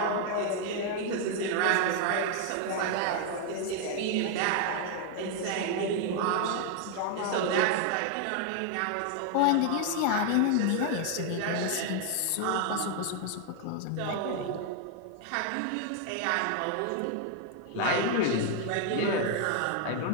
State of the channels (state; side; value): different; both; correlation 0.00